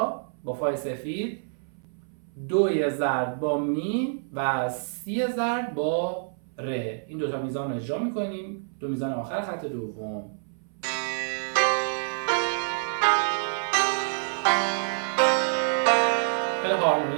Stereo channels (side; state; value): left; silent; 60 dB below the other